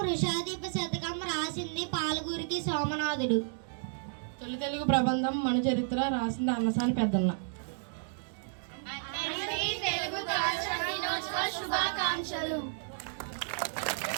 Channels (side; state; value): left; silent; digital silence